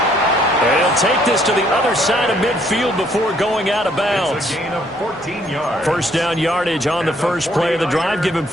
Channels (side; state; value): both; normal; correlation 0.66